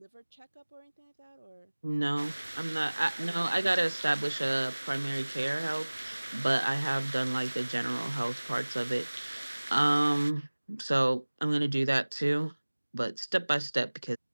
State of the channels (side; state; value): both; inverted; correlation -1.00